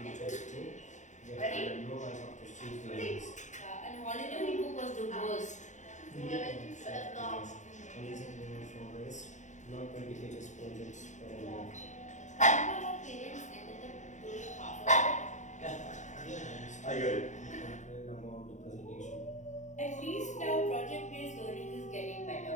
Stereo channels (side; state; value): right; late; 0.35 ms